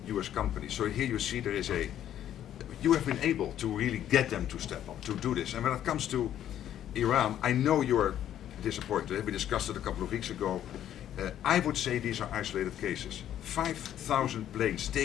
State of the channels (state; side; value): quieter; right; 11.0 dB